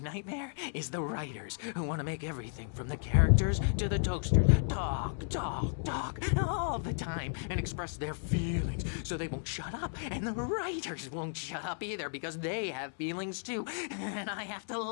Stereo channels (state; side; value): silent; right; 55 dB below the other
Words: is the writers who want to make everything from the characters to the toasters talk all the time and express their feelings so they won't shut up. And the writers won't shut up either because they have feelings too. And I have to